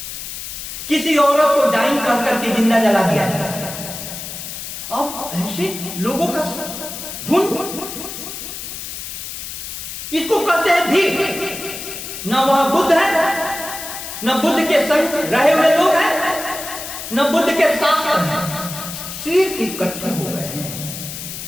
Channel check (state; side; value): noise; left; hiss, 8 dB below the sound